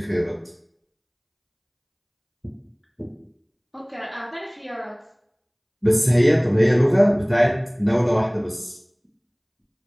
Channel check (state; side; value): identical; both; correlation 1.00